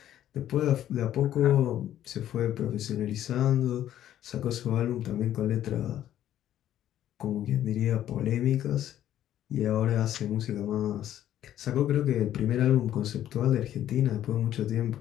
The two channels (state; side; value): quieter; right; 11.8 dB